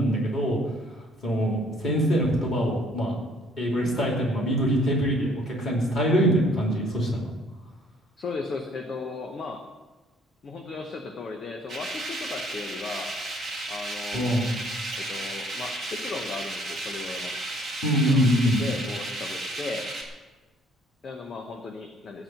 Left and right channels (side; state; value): both; normal; correlation 0.60